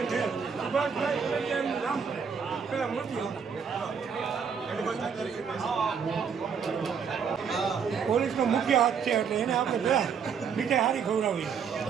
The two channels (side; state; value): left; quieter; 6.6 dB